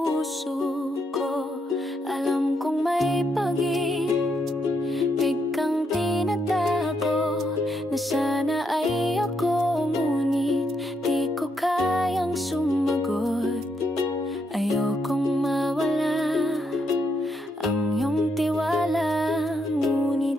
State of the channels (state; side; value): normal; both; correlation 0.78